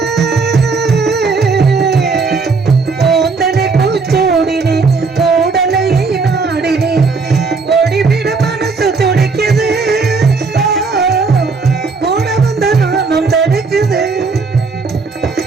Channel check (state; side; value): quieter; left; 4.4 dB